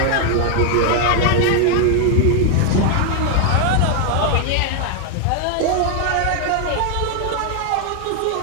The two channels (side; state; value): both; different; correlation 0.00